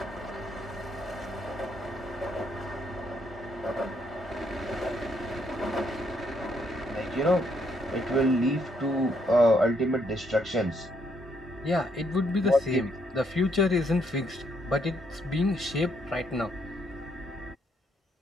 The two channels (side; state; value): both; normal; correlation 0.72